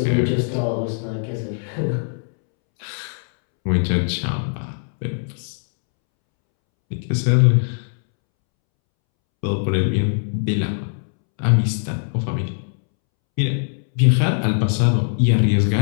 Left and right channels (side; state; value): right; silent; 65 dB below the other